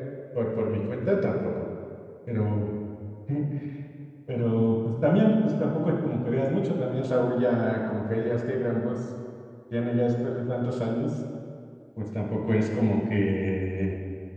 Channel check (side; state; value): both; identical; correlation 1.00